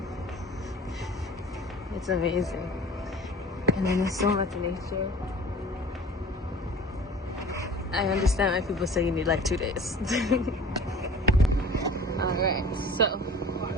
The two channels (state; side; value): normal; both; correlation 0.43